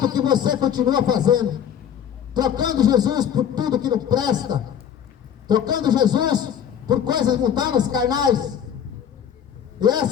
que você continua fazendo, trocando Jesus por tudo que não presta, trocando Jesus por coisas mundanas, carnais. E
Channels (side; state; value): right; quieter; 8.9 dB